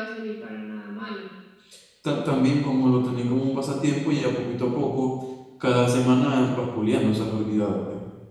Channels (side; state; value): both; identical; correlation 1.00